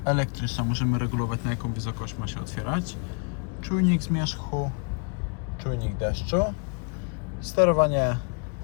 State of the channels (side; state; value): right; quieter; 37.0 dB